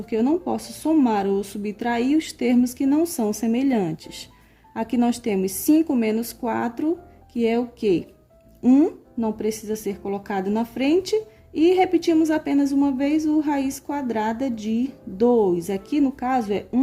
eu não posso somar ou subtrair os termos que não são semelhantes. Aqui nós temos 5 menos 4, que é o quê? 1, não precisa ser colocado na frente, e repetimos apenas uma vez o raiz quadrada de 2. Aqui, no caso, é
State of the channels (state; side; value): identical; both; correlation 1.00